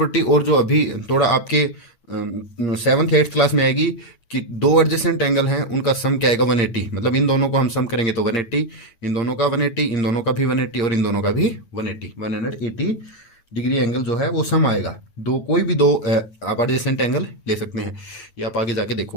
और जो अभी थोड़ा आपके 7th 8th क्लास में आएगी कि 2 एडजेसेंट एंगल हैं, उनका सम क्या आएगा? 180। मतलब इन दोनों को हम सम करेंगे तो 180, इन दोनों का 180, इन दोनों का भी 180 और इन दोनों का भी 180 डिग्री एंगल जो है वो सम आएगा। दो, कोई भी 2 आप एडजेसेंट एंगल ले सकते हैं, ये आप आगे जाके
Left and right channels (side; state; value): right; late; 9.0 ms